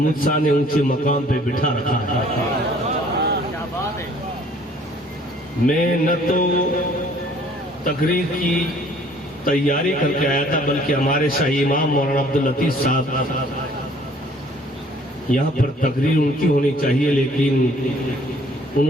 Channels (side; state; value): both; normal; correlation 0.57